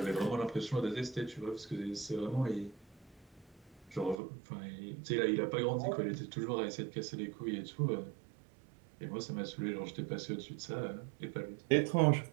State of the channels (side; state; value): left; drops out; at 4.2 s